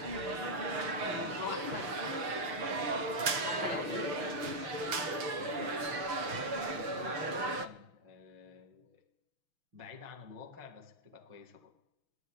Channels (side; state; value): left; late; 6.1 ms